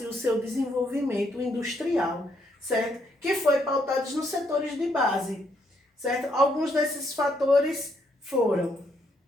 o seu desenvolvimento industrial, certo? Que foi pautado nos setores de base, certo? Alguns desses fatores foram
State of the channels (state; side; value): normal; both; correlation 0.74